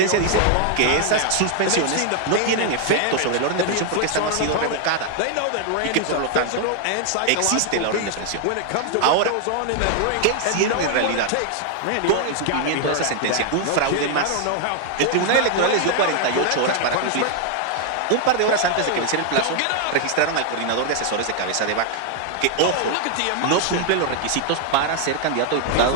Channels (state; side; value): different; both; correlation 0.00